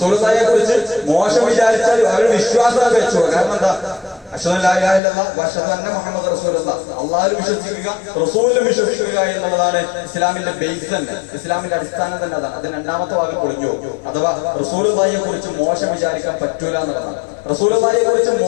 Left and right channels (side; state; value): right; drops out; at 5.0 s